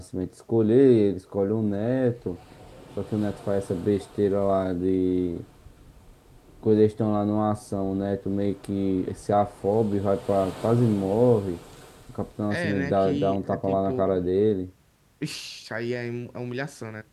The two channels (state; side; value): identical; both; correlation 1.00